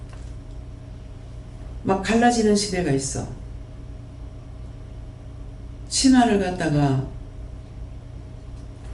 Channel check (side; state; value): both; identical; correlation 1.00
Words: 막 갈라지는 시대가 있어. 치마를 갖다가